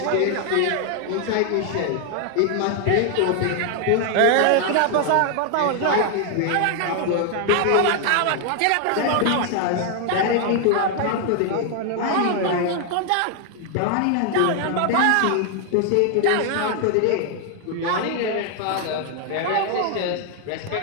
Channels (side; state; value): both; different; correlation 0.00